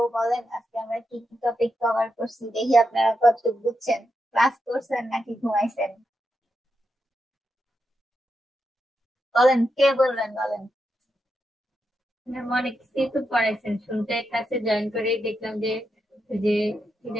বলেন আজকে আমরা কি কি টপিক কভার করছি, দেখি আপনারা কতটুকু বুঝছেন, ক্লাস করছেন নাকি ঘুমাইছেন। বলেন, কে বলবেন, বলেন। ম্যাম অনেক কিছুই তো পড়াইছেন, শুনতে ক্লাসে জয়েন করেই দেখলাম যে যে কি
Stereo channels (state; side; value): normal; both; correlation 0.85